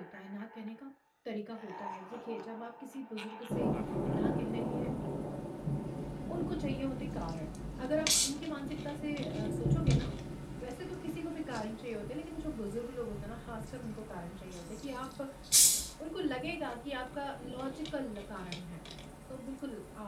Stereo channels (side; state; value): both; identical; correlation 1.00